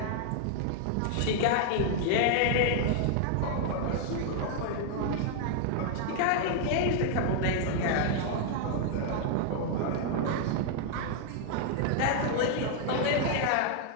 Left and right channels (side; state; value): both; different; correlation 0.00